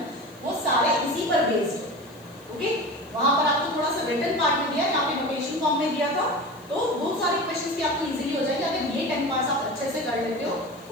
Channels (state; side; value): noise; left; hiss, 27 dB below the sound